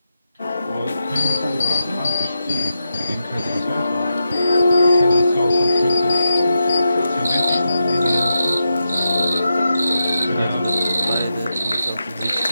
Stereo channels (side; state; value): both; inverted; correlation -0.87